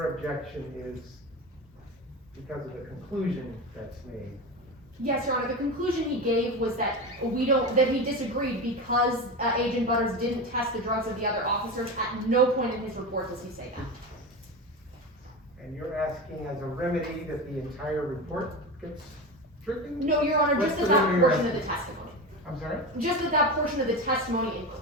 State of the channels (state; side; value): normal; both; correlation 0.24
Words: objection is because of the conclusion that's made? Yes, Your Honor, the conclusion he gave was that that he disagreed because Agent Butters didn't test the drugs of the other officers. At no point in his report does he say that. And you're asking as a remedy that the entire report gets stricken? No, Your Honor, What's just the that remedy portion you're of the asking? testimony. I'm sorry? Just that portion of the testimony in